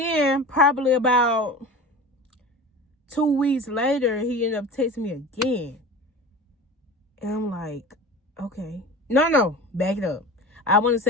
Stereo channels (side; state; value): both; normal; correlation 0.34